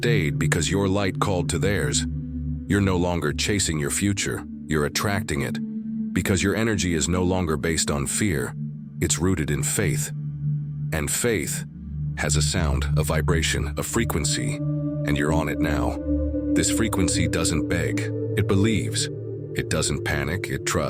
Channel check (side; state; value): both; identical; correlation 1.00